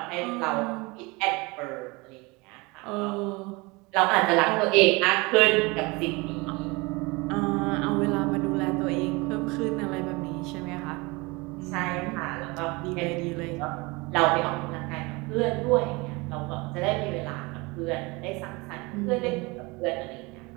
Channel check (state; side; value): quieter; left; 25.3 dB